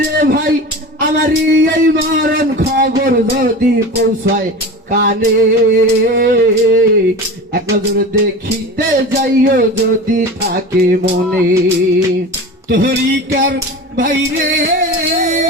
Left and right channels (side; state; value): both; normal; correlation 0.32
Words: রে ভাই আমারই এই মরণ খবর যদি পৌঁছায় কানে এক নজর দেখিতে যাইও যদি থাকে মনে তরিকার ভাই রে